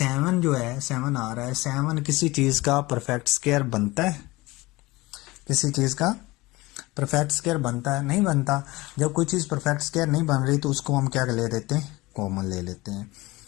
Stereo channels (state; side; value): quieter; right; 21.2 dB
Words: जो है, 7 आ रहा है, 7 किसी चीज का परफेक्ट स्केयर बनता है? किसी चीज का परफेक्ट स्केयर बनता है? नहीं बनता। जब कोई चीज परफेक्ट स्केयर नहीं बन रही तो उसको हम क्या ले देते हैं? कॉमन ले लेते हैं।